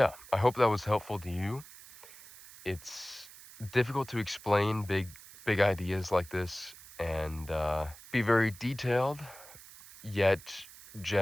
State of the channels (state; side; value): noise; right; hiss, 19 dB below the sound